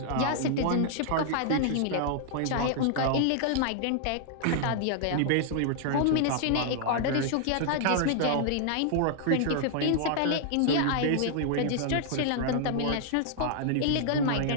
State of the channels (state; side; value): different; both; correlation -0.01